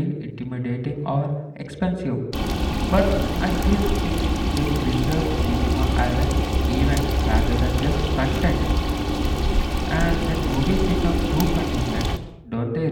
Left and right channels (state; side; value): identical; both; correlation 1.00